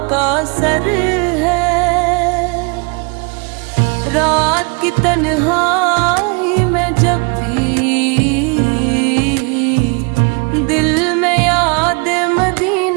का असर है। रात की तन्हाई में जब भी दिल में याद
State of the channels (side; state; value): left; quieter; 32.7 dB